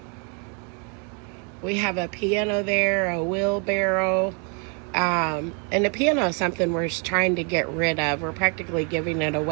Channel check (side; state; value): left; quieter; 37.1 dB